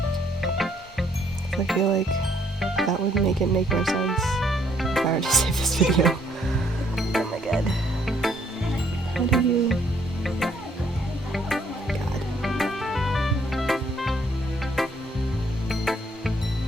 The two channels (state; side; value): normal; both; correlation 0.67